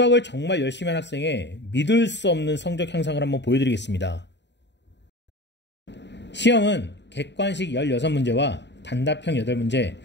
정말 열심히 한 학생의 믿을 수 없는 성적 향상을 한번 보여드리겠습니다. 시험은 객관식 16문제와 단답형 8문제,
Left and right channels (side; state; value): right; late; 0.51 ms